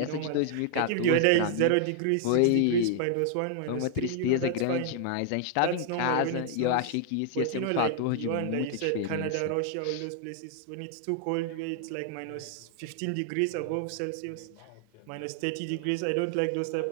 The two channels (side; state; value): both; different; correlation 0.00